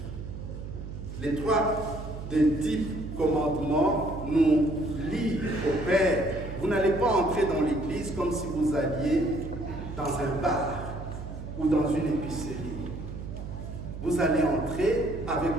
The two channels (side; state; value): right; noise; hum, 9 dB below the sound